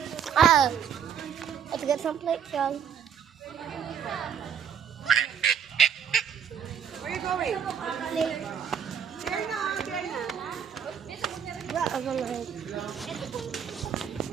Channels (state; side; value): quieter; left; 7.9 dB